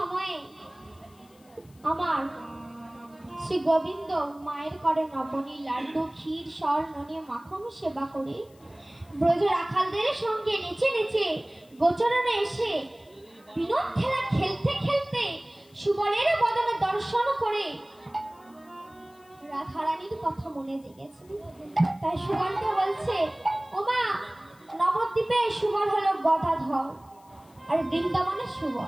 আমার শ্রী গোবিন্দ মায়ের করে নবনী লাড্ডু, ক্ষীর, স্বর্ণ নিয়ে মাখন সেবা করে ব্রজ রাখালদের সঙ্গে নেচে নেচে গোচরণে এসে বিনোদ খেলা খেলতে খেলতে সুবলের বদনে দর্শন করে রাধারানীর কথা মনে জেগেছে। তাই সুবলকে বলছে, ওমা, নবদ্বীপে সুবল হলো গদাধর আর বৃন্দাবনে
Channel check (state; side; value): noise; left; hiss, 30 dB below the sound